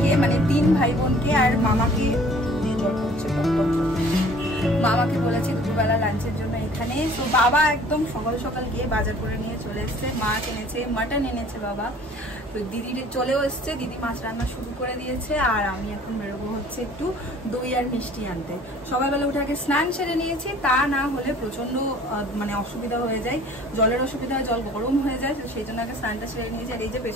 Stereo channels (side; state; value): both; normal; correlation 0.51